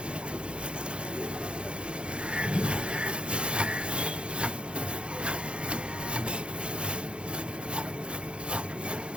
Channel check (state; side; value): late; left; 0.056 ms